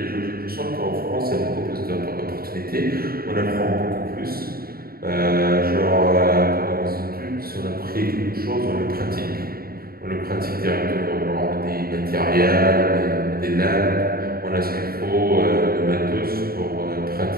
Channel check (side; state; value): left; late; 0.44 ms